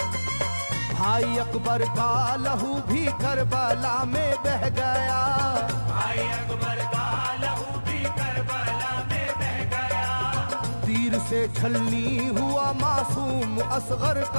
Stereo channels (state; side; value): inverted; both; correlation -1.00